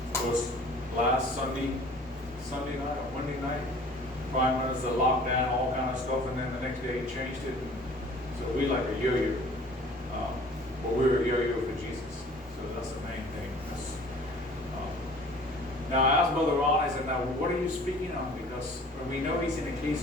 course, last Sunday night or Monday night, prime was the lockdown, all kind of stuff, and then the next day he changed it. So we like a yo-yo. But we're a yo-yo for Jesus. So that's the main thing. Now I asked Brother Ron, I said, now what are you speaking on? Because we know he's in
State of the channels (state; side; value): normal; both; correlation 0.48